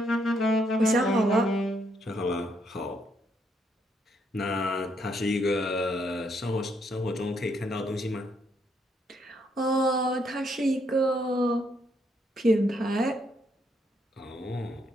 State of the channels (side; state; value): both; normal; correlation 0.74